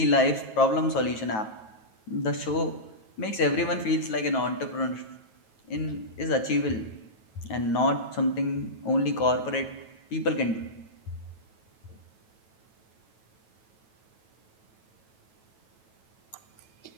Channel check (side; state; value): right; late; 9.2 ms